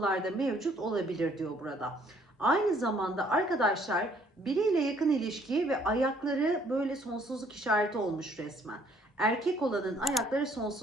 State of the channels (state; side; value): normal; both; correlation 0.63